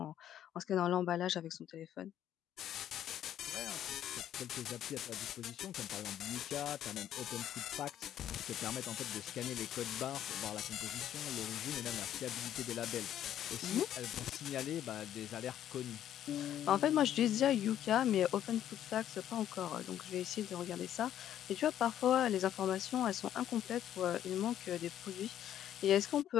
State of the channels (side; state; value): right; quieter; 11.0 dB